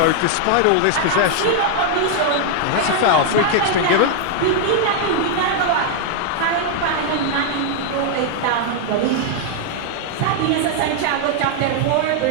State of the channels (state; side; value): different; both; correlation 0.00